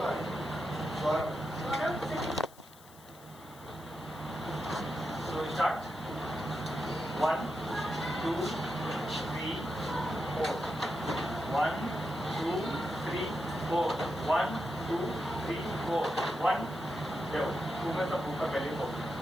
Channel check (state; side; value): noise; left; hiss, 22 dB below the sound